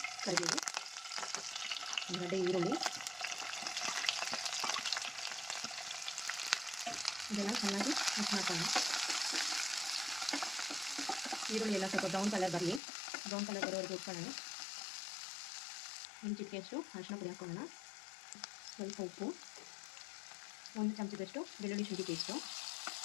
ಕರಿಬೇವು, ಒಂದು ಗಡ್ಡೆ ಈರುಳ್ಳಿ, ಇದೆಲ್ಲ ಚೆನ್ನಾಗಿ ಮಿಕ್ಸ್ ಮಾಡ್ಕೊಳ್ಳೋಣ. ಈರುಳ್ಳಿ ಎಲ್ಲ ಸ್ವಲ್ಪ ಬ್ರೌನ್ ಕಲರ್ ಬರಲಿ. ಬ್ರೌನ್ ಕಲರ್ ಬರೋವರೆಗೂ ಉಟ್ಕೊಳ್ಳೋಣ. ಒಂದು ಚಿಟಿಕೆಯಷ್ಟು ಅರಿಶಿನ ಪುಡಿ ಹಾಕ್ಕೊಳ್ಳೋಣ. ಸ್ವಲ್ಪ ಉಪ್ಪು, 1 ಚಮಚದಷ್ಟು ಬೆಳ್ಳುಳ್ಳಿ ಶುಂಠಿ ಪೇಸ್ಟು.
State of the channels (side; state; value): right; drops out; at 12.8 s